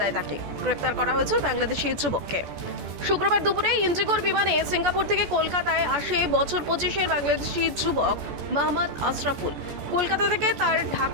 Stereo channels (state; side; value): late; left; 14 ms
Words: তাকে। গ্রেপ্তার করা হয়েছে বাংলাদেশি যুবককে। শুক্রবার দুপুরে ইন্ডিগোর বিমানে সিঙ্গাপুর থেকে কলকাতায় আসে বছর 25-এর বাংলাদেশি যুবক মোহাম্মদ আশরাফুল। কলকাতা থেকে তার